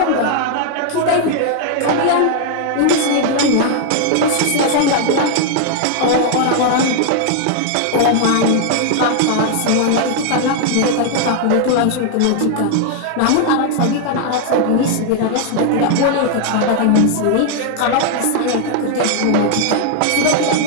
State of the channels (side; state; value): both; different; correlation 0.00